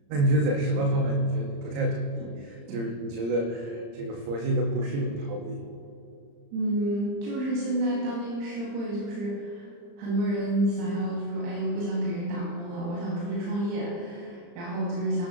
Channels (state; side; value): late; left; 35 ms